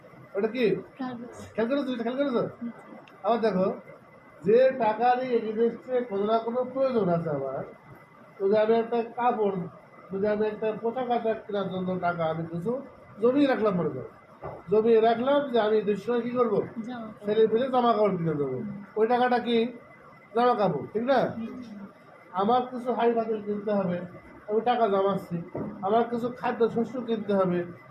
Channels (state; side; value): identical; both; correlation 1.00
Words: ওটা কি? কাগজ। খেয়াল করেছো? খেয়াল করেছো? আবার দেখো, যে টাকারই এগেনস্টে কোনো না কোনো প্রয়োজন আছে আমার, যদি আমি একটা কাপড়, যদি আমি একটা পোশাক আশাক কেনার জন্য টাকা আমি কিছু জমিয়ে রাখলাম, মনে করো জমিয়ে রাখলাম যে আমি দুসময় কী করবো, জামা ছেলে ফেলে জামা কাপড় কিনে দেবো, ওই টাকাটা কি? জামা কাপড়, ঠিক না? আমার কিছু হাই ফাতিল কিনতে হবে, আমি টাকা জমাচ্ছি, আমার কিছু খাদ্য শস্য কিনতে হবে,